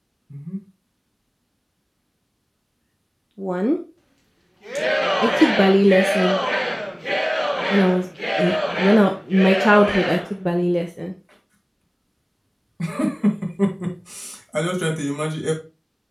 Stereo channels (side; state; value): both; identical; correlation 1.00